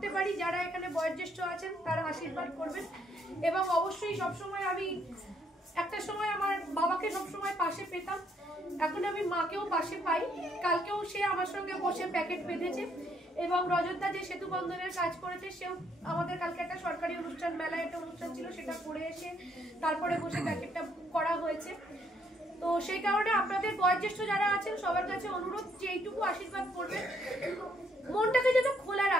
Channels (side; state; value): both; normal; correlation 0.70